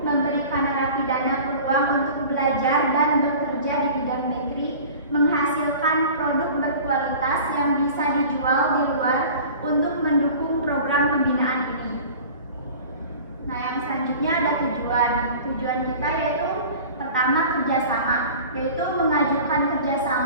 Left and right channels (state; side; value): inverted; both; correlation -0.41